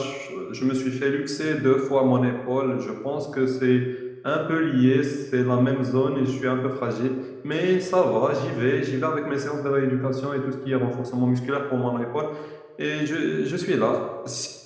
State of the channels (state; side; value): identical; both; correlation 1.00